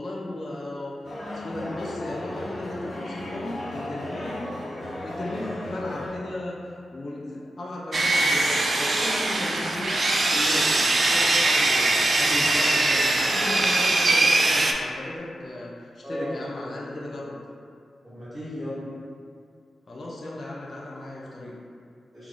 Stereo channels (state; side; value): normal; both; correlation 0.90